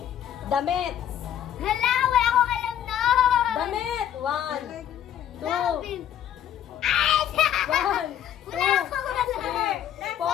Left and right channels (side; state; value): right; quieter; 10.3 dB